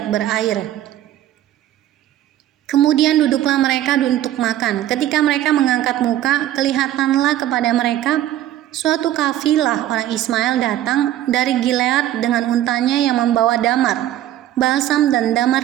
berair. Kemudian duduklah mereka untuk makan. Ketika mereka mengangkat muka, kelihatanlah kepada mereka suatu kafilah orang Ismail datang dari Gilead dengan untanya yang membawa damar, balsam dan damar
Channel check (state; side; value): quieter; left; 12.8 dB